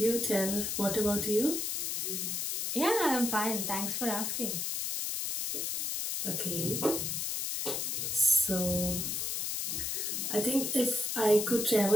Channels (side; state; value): left; noise; hiss, 1 dB below the sound